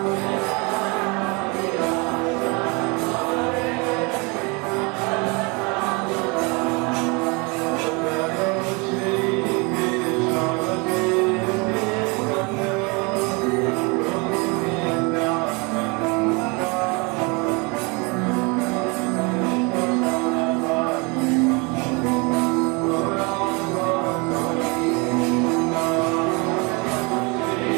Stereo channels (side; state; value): left; quieter; 29.5 dB